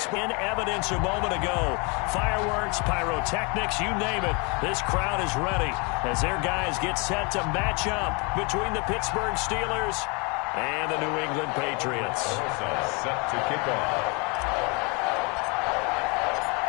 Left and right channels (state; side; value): quieter; right; 30.9 dB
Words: in evidence a moment ago. Fireworks, pyrotechnics, you name it. This crowd is ready as their guys get set to match up between the Pittsburgh Steelers and the New England Patriots. Set to kick off.